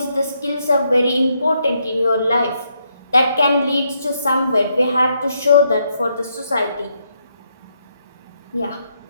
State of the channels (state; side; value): inverted; both; correlation -0.77